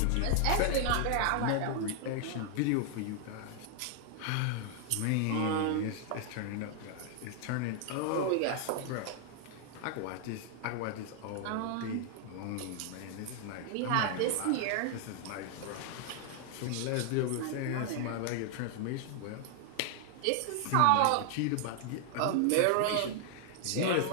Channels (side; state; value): both; different; correlation 0.00